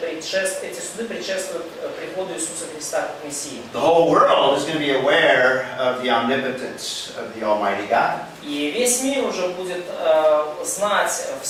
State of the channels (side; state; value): both; identical; correlation 1.00